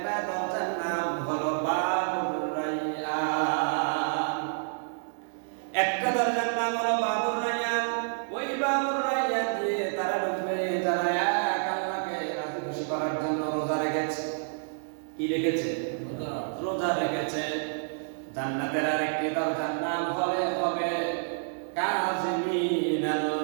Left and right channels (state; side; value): silent; left; digital silence